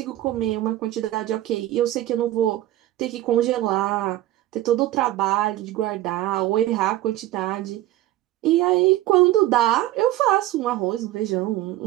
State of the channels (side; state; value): left; quieter; 14.8 dB